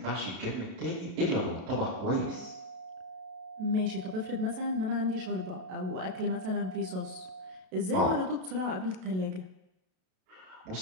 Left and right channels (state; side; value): late; left; 32 ms